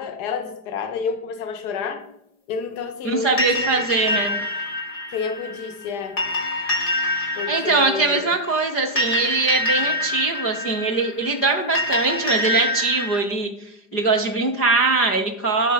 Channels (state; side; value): late; right; 4.9 ms